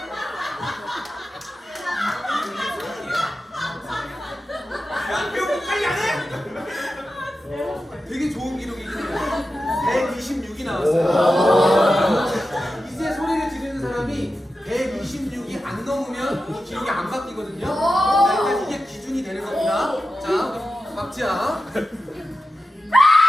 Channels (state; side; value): normal; both; correlation 0.92